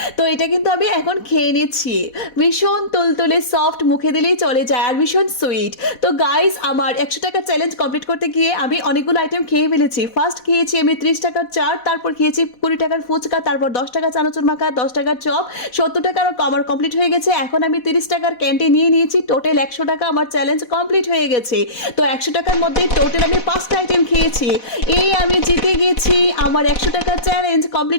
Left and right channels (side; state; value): right; late; 4.1 ms